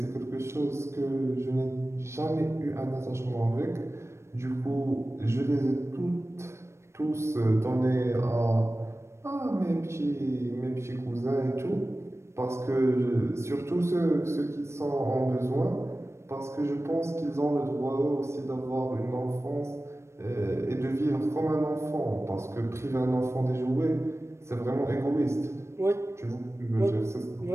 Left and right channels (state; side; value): late; left; 0.13 ms